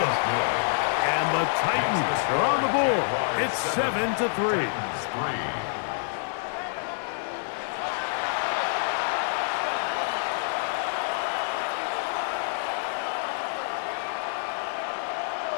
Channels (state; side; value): silent; right; digital silence